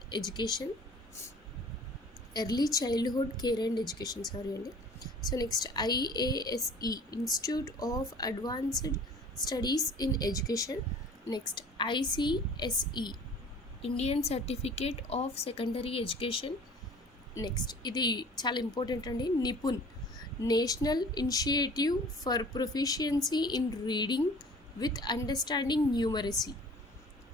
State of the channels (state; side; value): normal; both; correlation 0.47